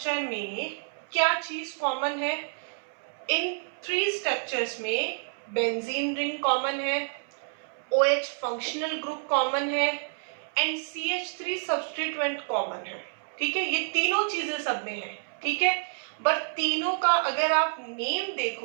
में क्या चीज कॉमन है, इन 3 स्ट्रक्चर्स में बेंजीन रिंग कॉमन है, OH फंक्शनल ग्रुप कॉमन है एंड CH3 सब्स्टिट्यूएंट कॉमन है, ठीक है। ये तीनों चीजें सब में है, ठीक है। बट तीनों का अगर आप नेम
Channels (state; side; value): silent; left; 59 dB below the other